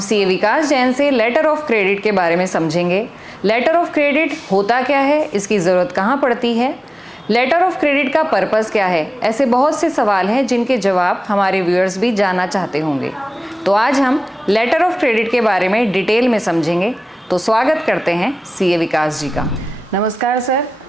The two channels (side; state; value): both; normal; correlation 0.97